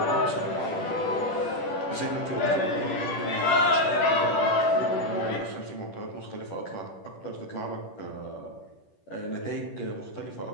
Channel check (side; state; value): right; late; 10 ms